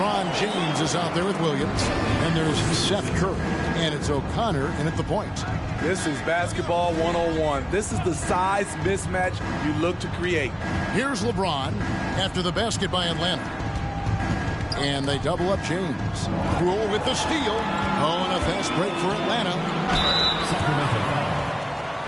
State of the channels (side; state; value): both; identical; correlation 1.00